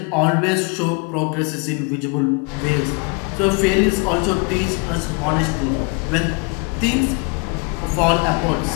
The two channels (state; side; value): quieter; right; 31.3 dB